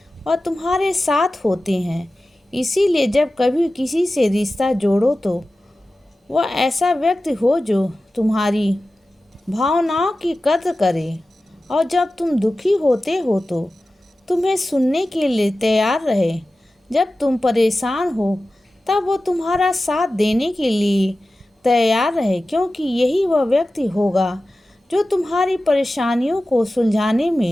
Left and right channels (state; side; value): normal; both; correlation 0.95